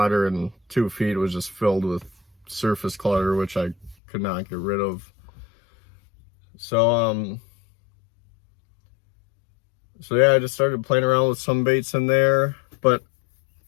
and 2 feet was just filled with surface clutter, which I could not get rid of. So yeah, I just started playing around with some baits in there, but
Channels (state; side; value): drops out; right; at 4.0 s